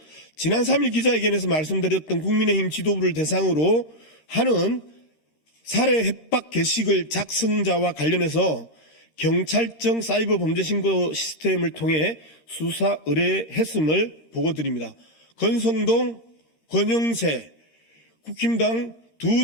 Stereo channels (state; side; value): late; right; 13 ms